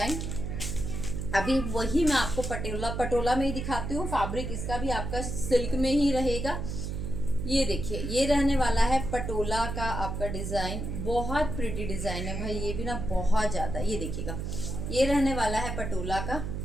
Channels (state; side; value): noise; right; hum, 4 dB below the sound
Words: अभी वही मैं आपको पटोला में ही दिखाती हूँ। फैब्रिक इसका भी आपका सिल्क में ही रहेगा। ये देखिए, ये रहने वाला है पटोला का आपका डिज़ाइन, बहुत प्रिटी डिज़ाइन है भाई, ये भी ना बहुत ज़्यादा। ये देखिएगा, ये रहने वाला है पटोला का,